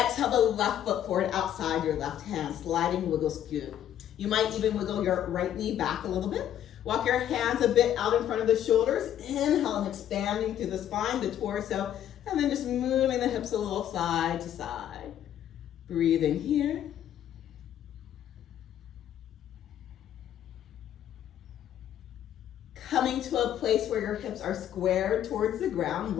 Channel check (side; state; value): right; quieter; 10.8 dB